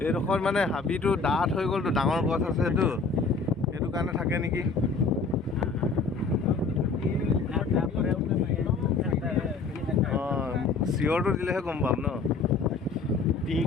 এইডোখৰ মানে হাবিটো ডাঠ হৈ গ'লতো ডাঙৰ গছ আছে সেইটো সেইটো কাৰণে থাকে নেকি চিঞৰটো দিলেহে গম পাম ন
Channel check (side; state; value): right; quieter; 4.4 dB